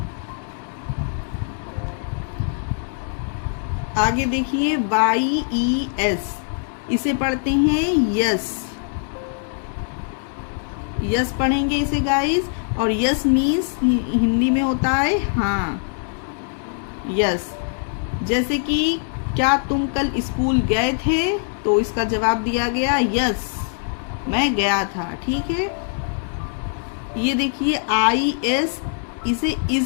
आगे देखिए YES, इसे पढ़ते हैं यस, यस पढ़ेंगे इसे गाइस, और यस मीन्स हिंदी में होता है हाँ, यस। जैसे कि क्या तुम कल स्कूल गए थे, तो इसका जवाब दिया गया यस, मैं गया था, ठीक है। ये देखिए IS, इसे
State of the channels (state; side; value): silent; right; 64 dB below the other